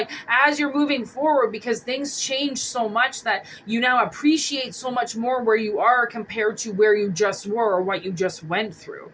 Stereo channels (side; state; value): both; identical; correlation 1.00